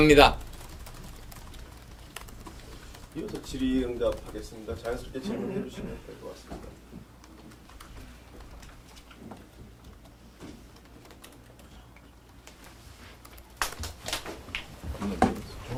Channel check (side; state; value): both; identical; correlation 1.00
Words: 이어서 질의응답하겠습니다. 자연스럽게 질문해 주시면 될 것 같습니다.